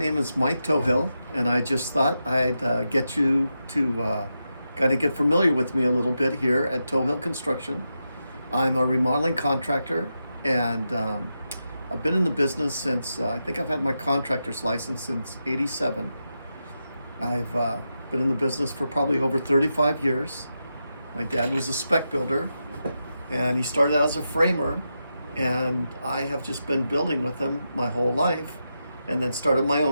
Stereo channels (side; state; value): both; inverted; correlation -0.87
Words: is Mike Tohill, and I just thought I'd get you to kind of get familiar with me a little bit here at Tohill Construction. I'm a remodeling contractor, and I've been in the business since I think I've had my contractor's license since '87. I've been in the business for probably over 35 years. My dad was a spec builder, and he started out as a framer, and I have just been building with him my whole life, and then started my